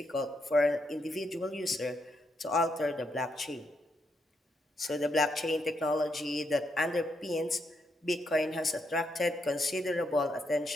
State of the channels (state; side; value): normal; both; correlation 0.79